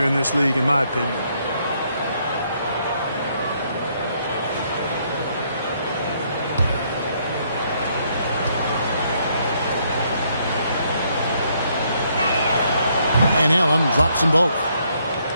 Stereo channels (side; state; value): both; inverted; correlation -0.71